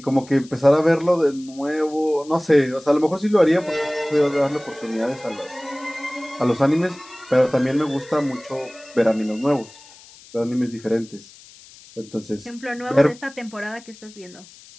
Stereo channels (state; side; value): noise; left; hiss, 22 dB below the sound